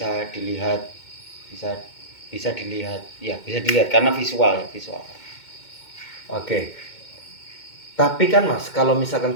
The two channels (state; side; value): late; right; 2.2 ms